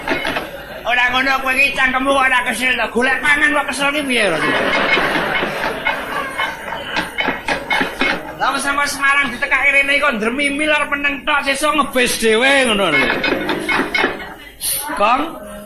Ora ngono kowe iki cangkemmu ora kesel to, golek pangan kok kesel ki piye? Lah sama Semarang ditekake rene kok ndremimil arep meneng tok sesuk ngebes dhewe ngono lho. Kong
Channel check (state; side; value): identical; both; correlation 1.00